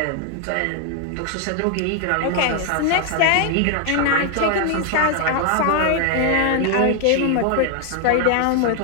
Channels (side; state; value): both; different; correlation 0.00